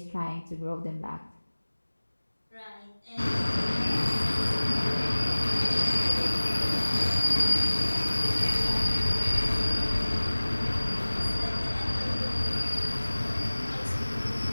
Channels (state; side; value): inverted; both; correlation -1.00